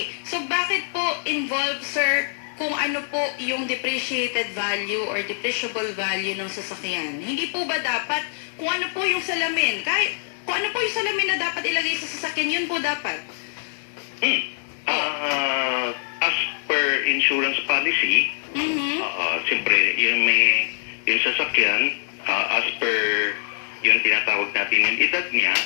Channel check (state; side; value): silent; right; digital silence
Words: so bakit po involved, sir, kung ano po yung depreciated value or depreciable value ng sasakyan? Hindi po ba dapat, kung ano po yung salamin, kahit kung ano po yung salamin na dapat ilagay sa sasakyan, yun po dapat? As per insurance policy, siyempre, yung sasakyan, as per yung tinatawag natin yung edad niya,